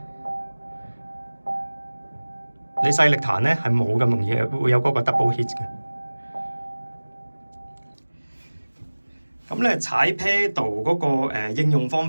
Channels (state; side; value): inverted; both; correlation -1.00